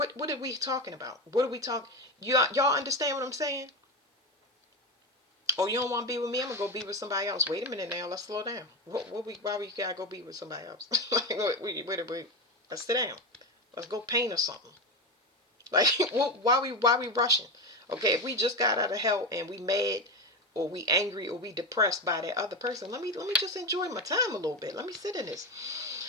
are we talking about? What are we talking? Y'all understand what I'm saying? Oh, you don't want to be with me? I'm gonna go be with somebody else. Wait a minute now. Let's slow down. Why we gotta go be with somebody else? Wait. Let's sit down. Let's go paint or something. Like, why we rushing? Okay, if we just got out of hell and we mad or we angry or we depressed by that other person, let me just enjoy my time a little bit. Let me sit in this.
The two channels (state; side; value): normal; both; correlation 0.17